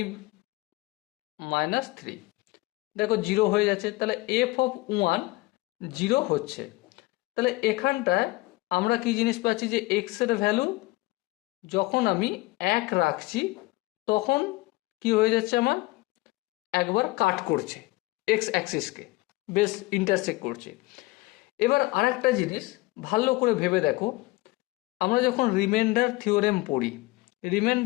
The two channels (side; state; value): right; quieter; 21.4 dB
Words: minus three, দেখো জিরো হয়ে যাচ্ছে। তাহলে এফ অফ ওয়ান জিরো হচ্ছে। তাহলে এখানটায় আমরা কি জিনিস পাচ্ছি যে এক্স এর ভ্যালু যখন আমি এক রাখছি তখন কি হয়ে যাচ্ছে, আমার একবার কাট করছে এক্স অ্যাক্সিসকে, বেশ ইন্টারসেক্ট করছে। এবার আরেকটা জিনিস ভালো করে ভেবে দেখো, আমরা যখন রিমাইন্ডার থিওরেম পড়ি,